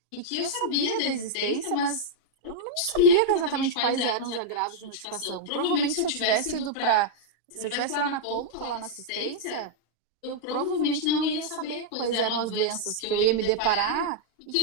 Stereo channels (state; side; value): late; right; 39 ms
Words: e que eu sabia da existência, mas eu não sabia exatamente quais eram os agravos de notificação. Provavelmente, se eu tivesse ido para. Se eu tivesse lá na ponta, lá na assistência, eu provavelmente não ia saber quais eram as doenças que eu ia me deparar e